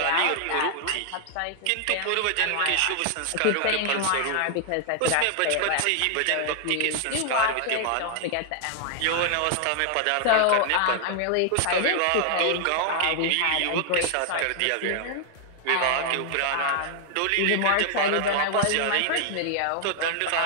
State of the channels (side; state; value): both; different; correlation 0.00